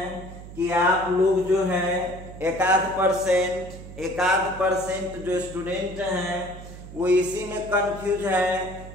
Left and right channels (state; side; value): noise; right; hum, 14 dB below the sound